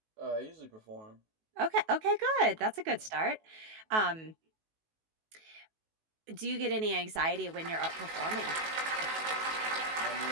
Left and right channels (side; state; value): left; late; 18 ms